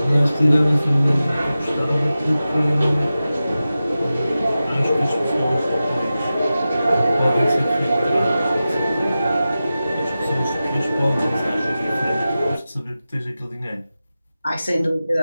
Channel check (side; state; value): both; inverted; correlation -0.94